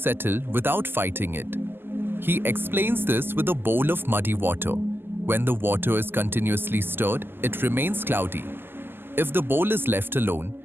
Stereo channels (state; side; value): late; left; 0.10 ms